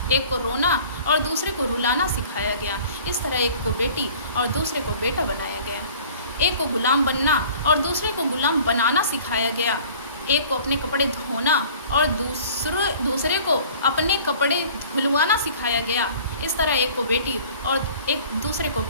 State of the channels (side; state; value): both; inverted; correlation -0.48